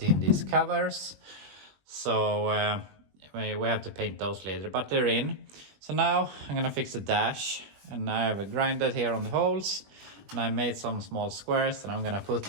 in these covers. So we have to paint those later, but they're in. So now I'm gonna fix the dash, and I have grinded here on the holes, and I made some small squares that I'm gonna put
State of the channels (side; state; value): left; late; 21 ms